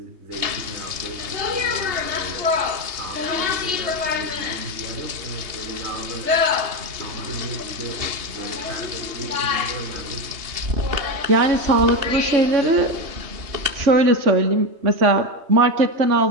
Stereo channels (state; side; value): late; left; 3.2 ms